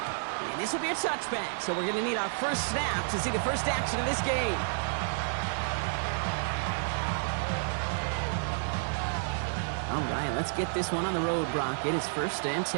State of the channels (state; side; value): silent; left; digital silence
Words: And this will be a touchback, so we're going to need our first snap to see the first action of this game. All right, let's get this one on the road, Brock. It is 1st and